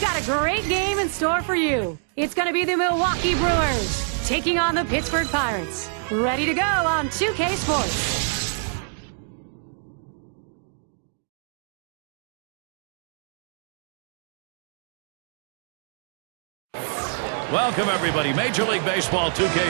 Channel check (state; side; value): silent; left; 61 dB below the other